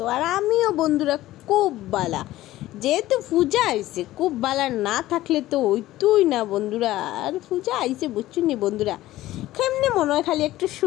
আর আমিও বন্ধুরা খুব ভালো। যেহেতু পূজা আইছে, খুব ভালো না থাকলে তো হইতোই না বন্ধুরা। আর পূজা আইছে বুঝছুনি বন্ধুরা, কেমনে মনে হয় খালি একটু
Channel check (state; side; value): quieter; right; 15.7 dB